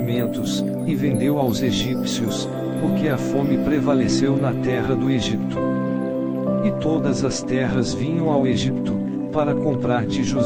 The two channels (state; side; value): identical; both; correlation 1.00